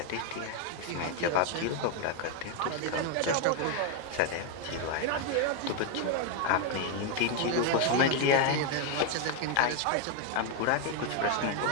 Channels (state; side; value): different; both; correlation 0.01